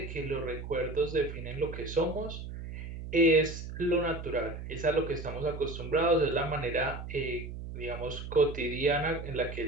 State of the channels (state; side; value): noise; right; hum, 9 dB below the sound